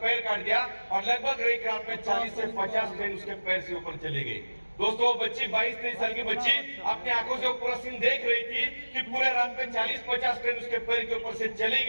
पैर काट दिया और लगभग एक रात में 40 से 50 ट्रेन उसके पैर से ऊपर चले गई। दोस्तों वो बच्ची 22-23 साल की बच्ची अपनी आंखों से पूरा सीन देख रही थी कि पूरे रात में 40-50 ट्रेन उसके पैर के ऊपर से चली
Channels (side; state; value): both; inverted; correlation -1.00